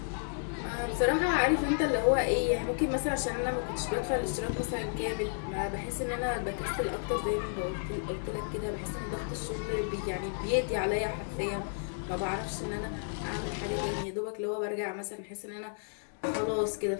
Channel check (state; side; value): silent; right; digital silence